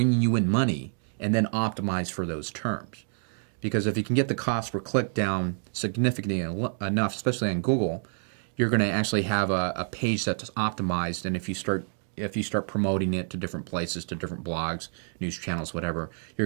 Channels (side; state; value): left; silent; 58 dB below the other